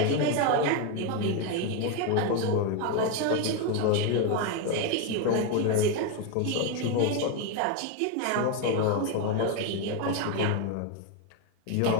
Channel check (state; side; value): different; both; correlation 0.02